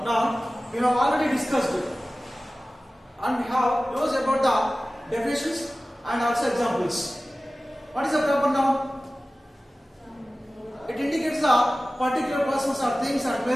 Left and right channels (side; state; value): both; normal; correlation 0.96